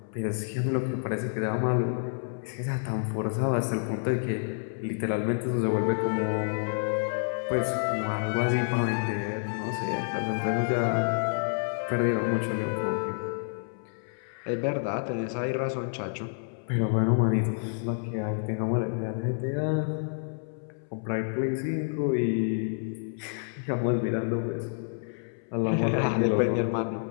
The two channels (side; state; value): right; silent; 59 dB below the other